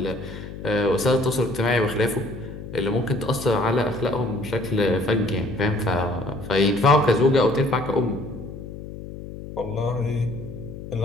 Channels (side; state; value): left; noise; hum, 11 dB below the sound